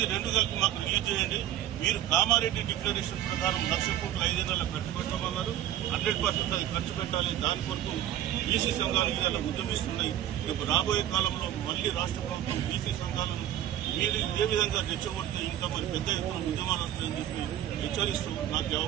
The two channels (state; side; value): quieter; left; 11.9 dB